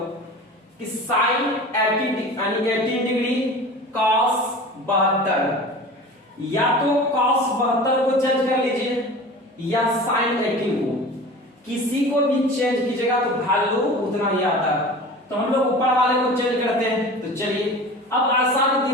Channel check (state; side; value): normal; both; correlation 0.37